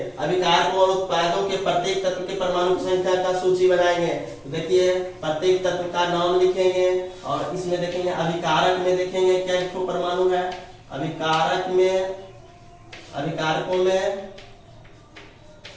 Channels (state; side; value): identical; both; correlation 1.00